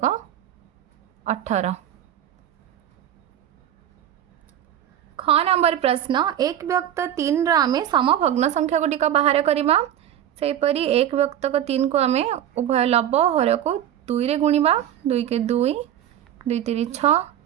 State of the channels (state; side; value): quieter; left; 10.9 dB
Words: ख नंबर प्रश्न 1/3 आम समभग्न संख्या गुड़िक बाहर करवा। सेपरी 1/3 को आम उभय लब हर को 2 रे गुणिबा। 2 के 2, 2 3 6।